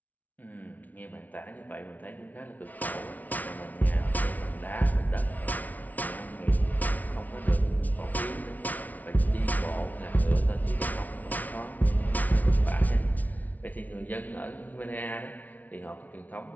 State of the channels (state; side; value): late; right; 0.075 ms